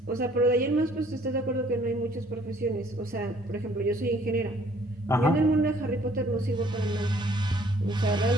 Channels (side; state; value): both; normal; correlation 0.60